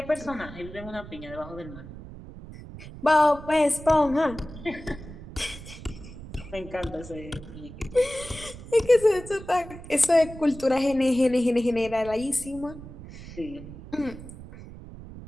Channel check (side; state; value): right; noise; rumble, 14 dB below the sound